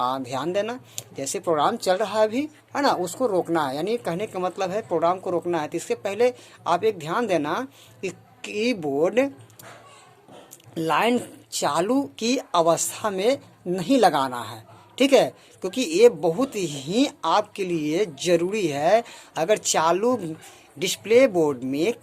ध्यान देना। जैसे प्रोग्राम चल रहा है अभी, है ना, उसको रोकना है। यानी कहने का मतलब है प्रोग्राम को रोकना है। तो इससे पहले आप एक ध्यान देना कि कीबोर्ड लाइन चालू की अवस्था में नहीं लगाना है। ठीक है, क्योंकि ये बहुत ही आपके लिए ज़रूरी है। अगर चालू डिस्प्ले बोर्ड में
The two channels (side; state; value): both; identical; correlation 1.00